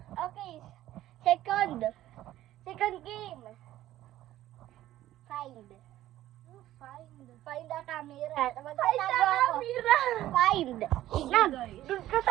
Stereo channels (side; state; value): left; quieter; 14.0 dB